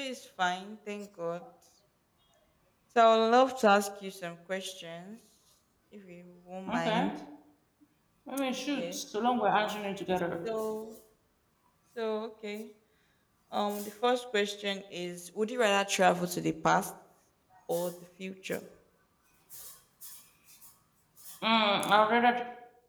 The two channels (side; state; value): both; identical; correlation 1.00